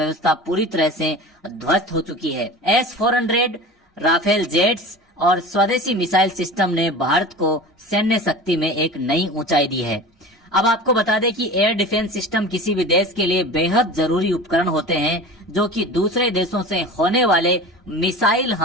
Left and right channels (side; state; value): both; normal; correlation 0.35